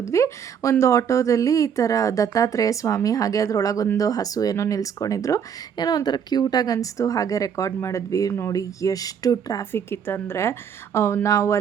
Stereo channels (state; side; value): quieter; left; 7.7 dB